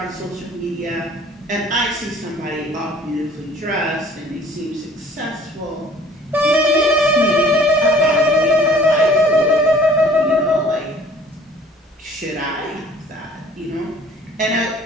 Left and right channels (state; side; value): normal; both; correlation 0.52